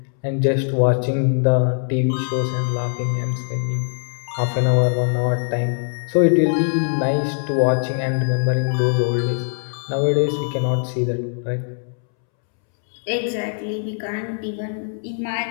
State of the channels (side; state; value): right; silent; 65 dB below the other